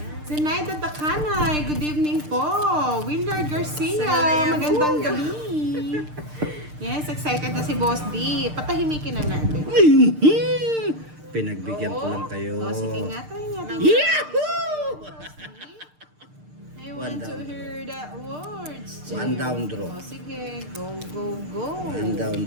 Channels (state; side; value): late; left; 6.6 ms